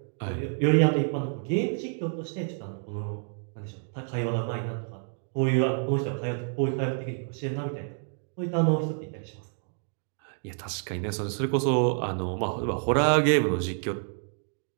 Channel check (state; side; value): silent; left; 56 dB below the other